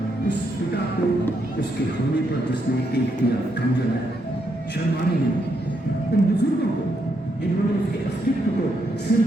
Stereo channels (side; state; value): both; normal; correlation 0.78